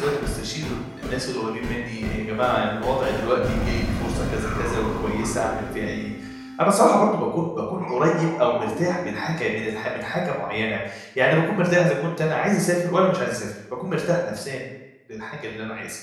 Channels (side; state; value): both; identical; correlation 1.00